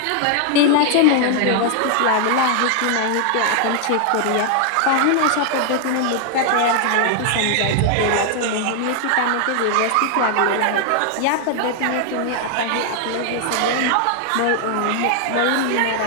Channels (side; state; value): both; different; correlation 0.00